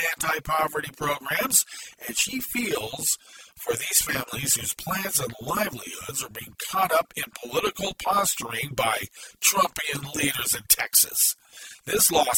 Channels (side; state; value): both; identical; correlation 1.00